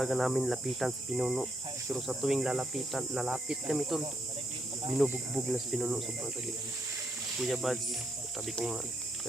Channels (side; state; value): both; normal; correlation 0.76